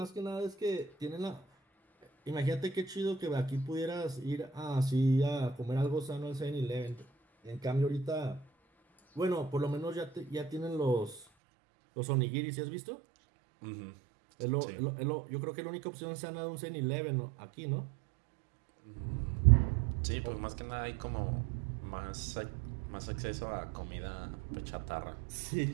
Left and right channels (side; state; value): left; drops out; at 11.2 s